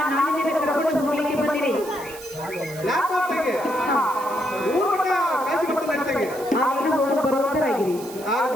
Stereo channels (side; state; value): right; noise; hiss, 16 dB below the sound